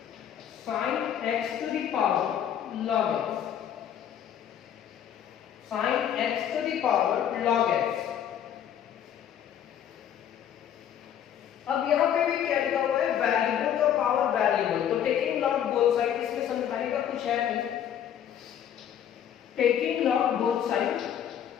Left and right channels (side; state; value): right; quieter; 9.7 dB